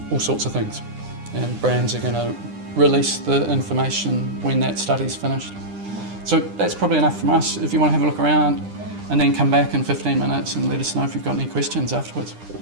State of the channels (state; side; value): late; left; 9.9 ms